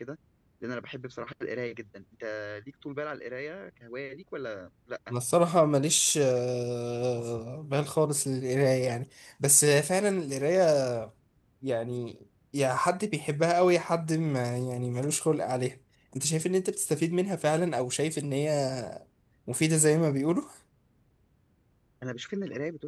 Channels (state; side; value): identical; both; correlation 1.00